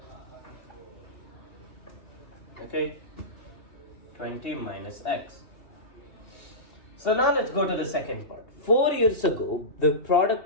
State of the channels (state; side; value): late; right; 2.7 ms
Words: Okay, 20 minus x. So now let's go to the second part. 4 years ago, the